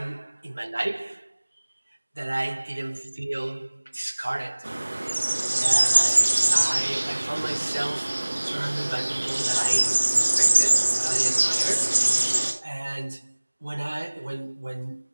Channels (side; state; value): both; inverted; correlation -1.00